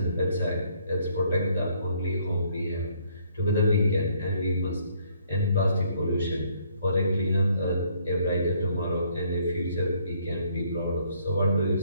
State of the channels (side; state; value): both; inverted; correlation -0.66